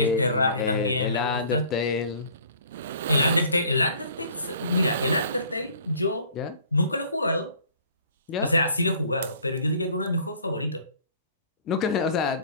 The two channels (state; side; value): inverted; both; correlation -0.52